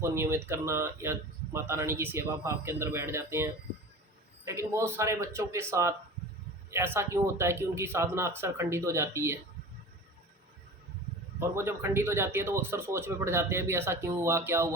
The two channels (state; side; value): normal; both; correlation 0.35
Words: को नियमित करना या माता रानी की सेवा भाव के अंदर बैठ जाते हैं। लेकिन बहुत सारे बच्चों के साथ ऐसा क्यों होता है कि उनकी साधना अक्सर खंडित हो जाती है, और वो जब खंडित हो जाती है तो वो अक्सर सोच में पड़ जाते हैं भी ऐसा क्यों हुआ, क्या